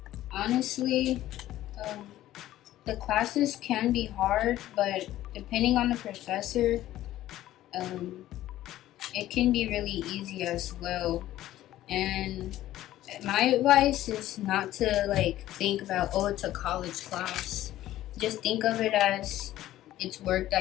honestly, the classes can be hard, but depending on the professor, it can be really easy as well. And my advice is not to like think about, oh, it's a college class. Just think of it as it's work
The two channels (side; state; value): right; quieter; 14.1 dB